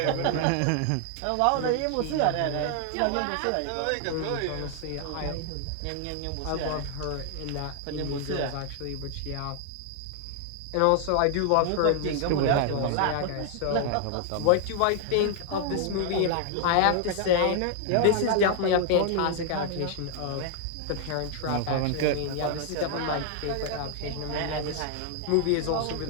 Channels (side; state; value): both; different; correlation 0.00